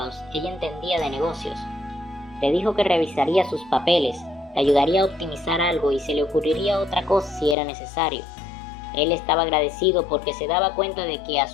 ella entendía de negocios. Le dijo que revisaría sus papeles, le ayudaría a optimizar algo y se le ocurriría otra cosa si era necesario. Él estaba agradecido porque se daba cuenta de que a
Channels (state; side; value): drops out; right; at 7.6 s